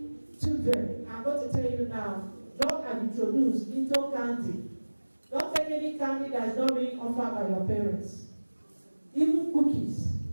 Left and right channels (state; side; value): inverted; both; correlation -1.00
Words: children. I'm going to tell you now, drugs are introduced into candy. Don't take any candy that is not being offered by your parents. Even cookies.